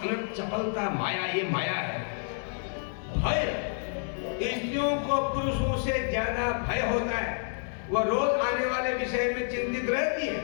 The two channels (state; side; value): silent; right; digital silence